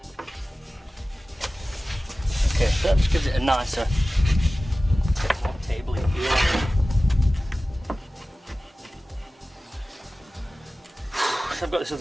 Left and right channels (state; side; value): normal; both; correlation 0.96